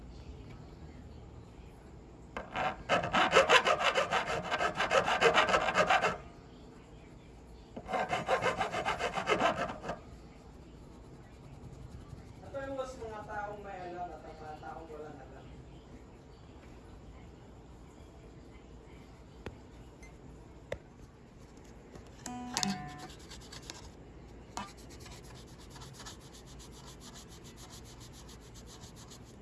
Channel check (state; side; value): identical; both; correlation 1.00